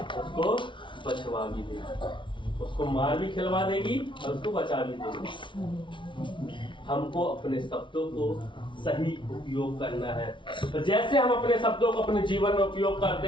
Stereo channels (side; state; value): right; late; 0.24 ms